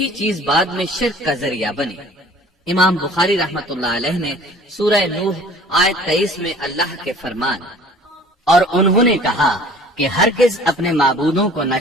چیز بعد میں شرک کا ذریعہ بنی۔ امام بخاری رحمت اللہ علیہ نے سورہ نوح آیت 23 میں اللہ کے فرمان اور انہوں نے کہا کہ ہرگز اپنے معبودوں کو نہ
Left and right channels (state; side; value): normal; both; correlation 0.49